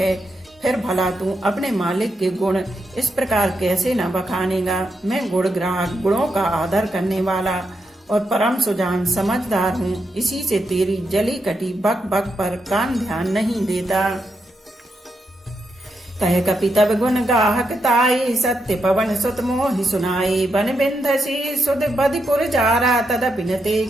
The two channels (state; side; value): normal; both; correlation 0.83